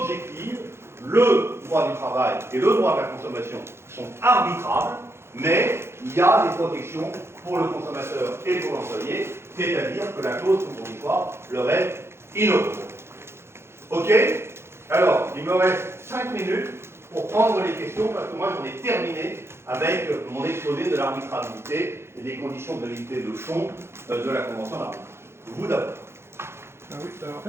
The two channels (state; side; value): late; left; 0.12 ms